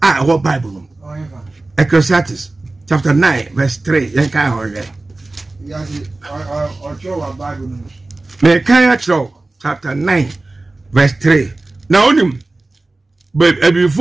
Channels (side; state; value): left; quieter; 3.1 dB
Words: ho bible no Ecclesiastes chapter 9 verse 3 yen kai ho re yasi o cho wa bible no me kai chapter 9 verse 3 na onim